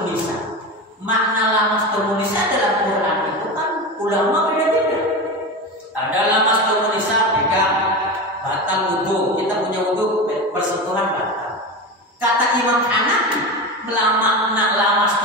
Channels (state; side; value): normal; both; correlation 0.24